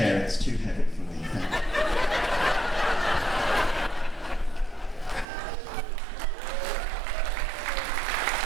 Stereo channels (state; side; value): drops out; left; at 5.2 s